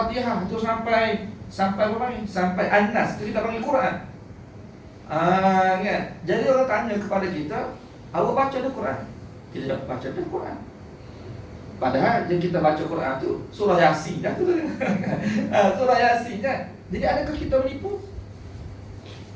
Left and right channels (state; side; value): identical; both; correlation 1.00